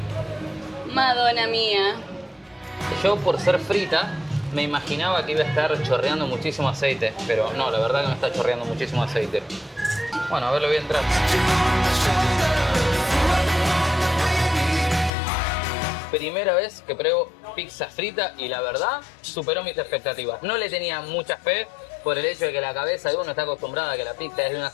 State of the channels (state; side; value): drops out; right; at 15.1 s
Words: Madonna mía. Yo, por ser frita, me imaginaba que iba a estar chorreando muchísimo aceite, pero no, la verdad que no está chorreando muchísimo aceite. Bueno, a ver, lo voy a entrar. Primera vez que pruebo pizza frita y la verdad superó mis expectativas. No le tenía mucha fe por el hecho de que la cabeza de uno está acostumbrada a que la pizza es de una